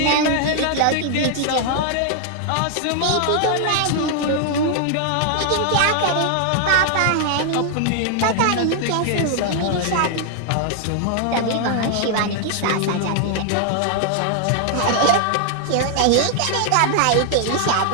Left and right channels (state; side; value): different; both; correlation 0.00